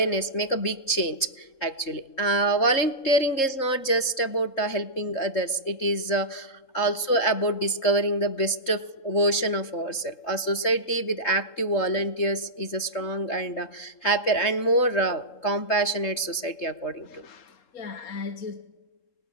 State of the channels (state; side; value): late; right; 3.7 ms